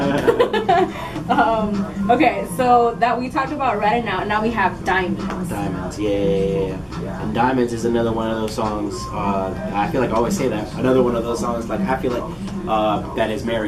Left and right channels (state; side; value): identical; both; correlation 1.00